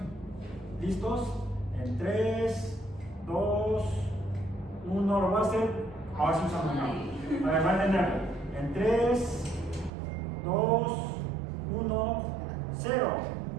¿Listos? En 3, 2, 1, lo voy a hacer. Ahora sí usamos una. A ver, va a entenderlo. En 3, 2, 1, 0.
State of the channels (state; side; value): drops out; left; at 9.9 s